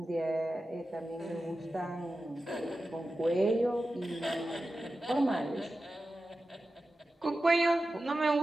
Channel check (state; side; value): normal; both; correlation 0.93